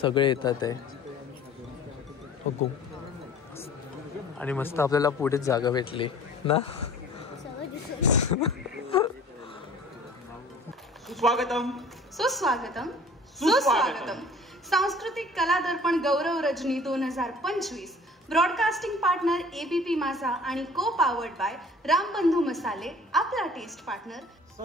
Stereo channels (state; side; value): normal; both; correlation 0.48